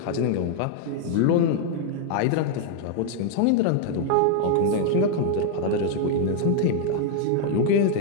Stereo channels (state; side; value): different; both; correlation 0.00